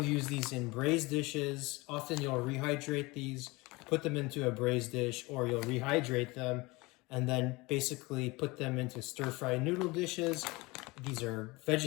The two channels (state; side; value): quieter; right; 23.5 dB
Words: use these in braised dishes. Often you'll rehydrate these, put them into a braised dish, or you'll rehydrate them and then basically put them into stir-fried noodle dishes. These are